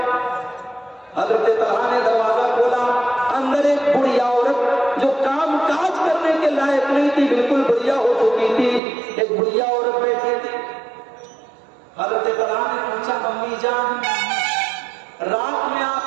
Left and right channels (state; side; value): drops out; left; at 8.8 s